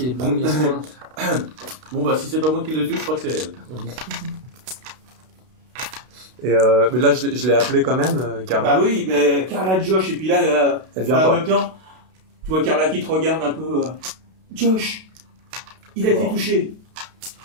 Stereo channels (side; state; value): left; late; 32 ms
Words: est les premiers soins. Bon, bah, si c'est pas moi qui le tue, je crois que c'est elle. Et mais là, je l'ai appelé quand même, Carla. Bah oui, mais Carla, Josh, et puis là, Elle vient en pas. même temps, tu vois Carla qui te regarde un peu. Josh, il a été touché.